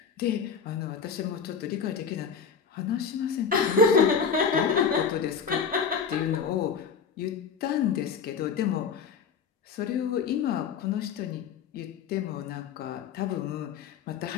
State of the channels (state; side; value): quieter; right; 6.3 dB